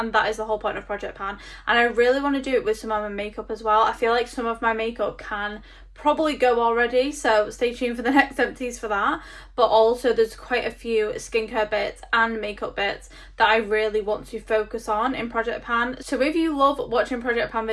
that is the whole point of Project Pan. And I really want to do it with some of my makeup as well. I feel like some of my makeup can probably go already, so stay tuned for the next empties for that. But also there's quite a few skincare bits and makeup bits that I really want to focus on in Project Pan. So if you love watching Project Pan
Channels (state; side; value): identical; both; correlation 1.00